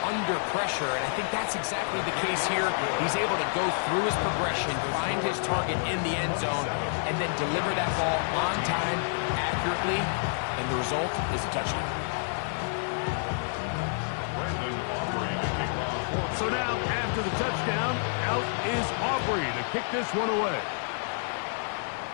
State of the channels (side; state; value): right; silent; digital silence